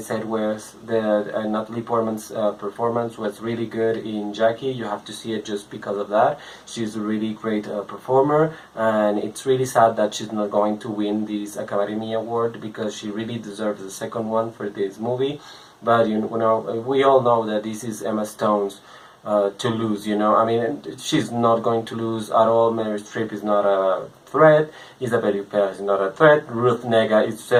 was that Natalie Portman's performance was really good in Jackie. You have to see it just because of that. She's a really great performer, and it's really sad that she's not going to win this Academy Award because she really deserves the second one for this movie. But we all know that this is Emma Stone's to lose. I mean, she's not going to lose at all. Meryl Streep is not a threat. Isabelle Huppert is not a threat. Ruth Negga is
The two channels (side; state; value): both; identical; correlation 1.00